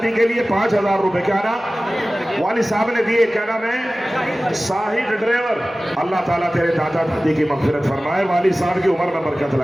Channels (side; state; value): both; normal; correlation 0.97